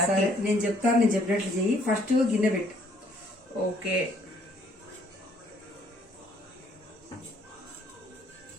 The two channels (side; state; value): both; normal; correlation 0.64